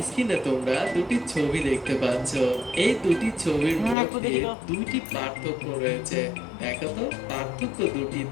স্ক্রিনে তোমরা দুটি ছবি দেখতে পাচ্ছ। এই দুটি ছবির মধ্যে দুটি পার্থক্য রয়েছে। দেখো তো পার্থক্য দুটি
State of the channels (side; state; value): right; drops out; at 4.0 s